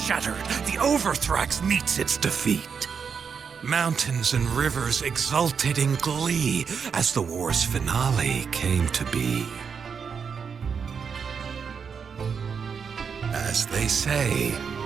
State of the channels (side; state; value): left; quieter; 6.3 dB